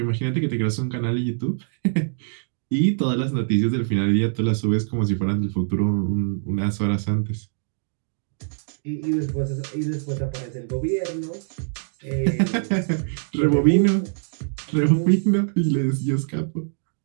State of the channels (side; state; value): left; silent; digital silence